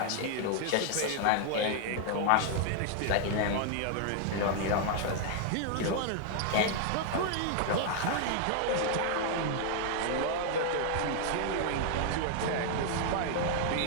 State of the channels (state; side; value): different; both; correlation 0.00